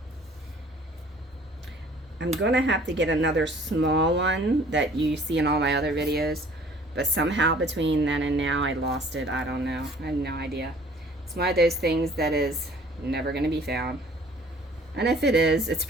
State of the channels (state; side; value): normal; both; correlation 0.53